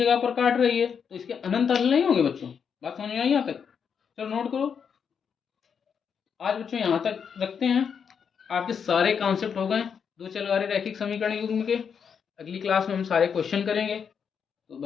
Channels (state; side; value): quieter; right; 6.9 dB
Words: पर काट रही है तो इसके अनंत हल नहीं होंगे बच्चों। बात समझ में आई यहाँ तक? चलो नोट करो। आज बच्चों यहाँ तक रखते हैं, आपके सारे कॉन्सेप्ट हो गए दो चल रहे रैखिक समीकरण युग्म के। अगली क्लास में हम सारे क्वेश्चन करेंगे। तो